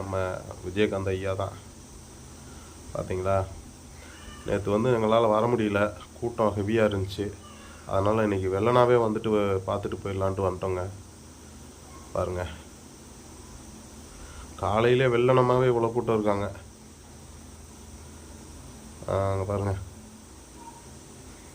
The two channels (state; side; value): identical; both; correlation 1.00